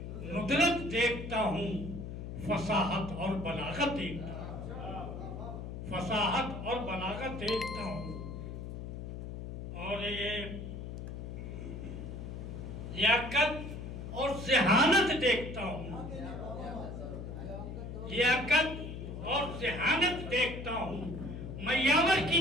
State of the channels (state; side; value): noise; left; hum, 8 dB below the sound